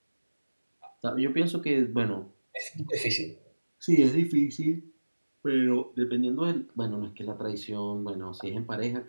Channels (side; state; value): both; inverted; correlation -1.00